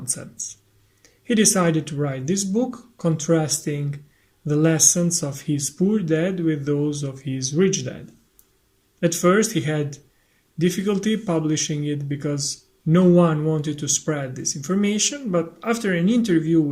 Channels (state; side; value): identical; both; correlation 1.00